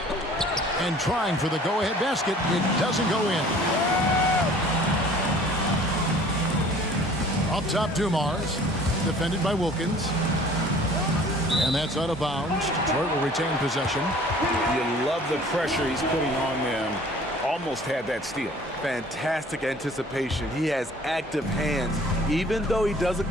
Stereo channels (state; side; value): normal; both; correlation 0.50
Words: And trying for the go-ahead basket. It doesn't go in. Up top, Dumars. Defended by Wilkins. And that's out of bounds. Detroit will retain possession. You love the pressure he's putting on them. Almost had that steal. Fantastic anticipation. He has active hands. Even though he doesn't